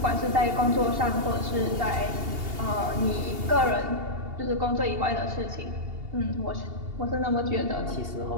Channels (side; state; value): left; late; 2.8 ms